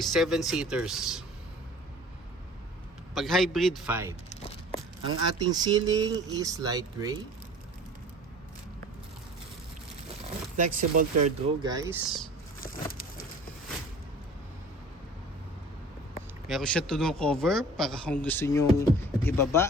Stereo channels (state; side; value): normal; both; correlation 0.45